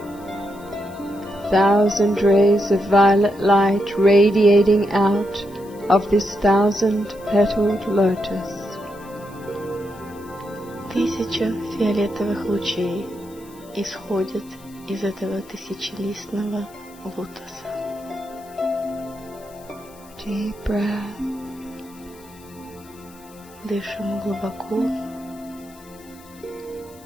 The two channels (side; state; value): left; noise; hiss, 24 dB below the sound